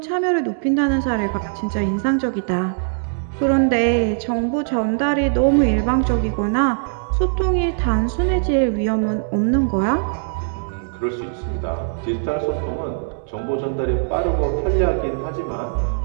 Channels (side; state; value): left; silent; digital silence